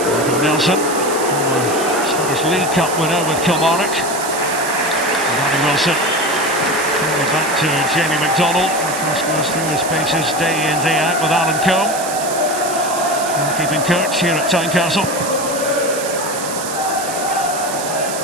Nelson, former Scottish League Cup winner with Kilmarnock. Danny Wilson. Back to Jamie McDonald. Of course, goes through his paces day in, day out with Alan Combe. Keeping coach here at Tynecastle.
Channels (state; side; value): noise; right; hiss, 7 dB below the sound